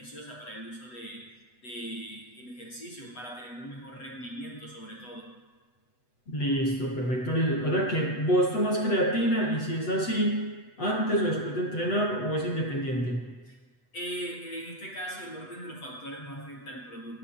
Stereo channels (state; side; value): late; right; 8.0 ms